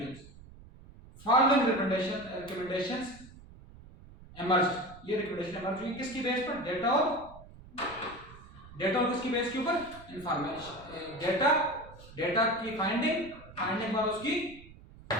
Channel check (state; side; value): noise; right; rumble, 20 dB below the sound